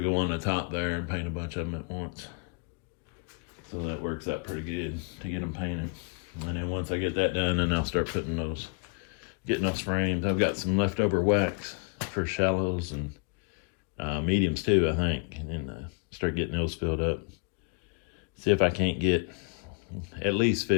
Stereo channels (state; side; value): quieter; right; 37.3 dB